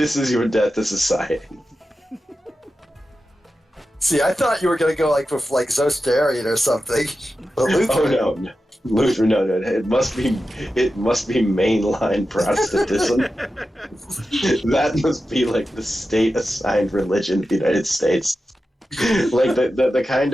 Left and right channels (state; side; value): normal; both; correlation 0.92